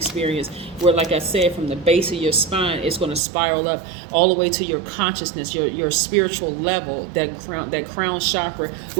where, like I said, from the base of your spine, it's going to spiral up all the way to your consciousness, your spiritual level, that crown chakra,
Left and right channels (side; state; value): left; drops out; at 3.2 s